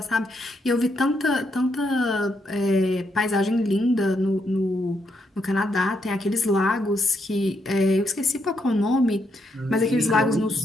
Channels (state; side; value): normal; both; correlation 0.78